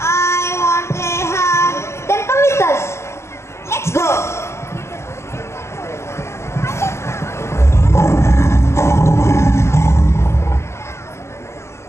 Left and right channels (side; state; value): right; late; 0.13 ms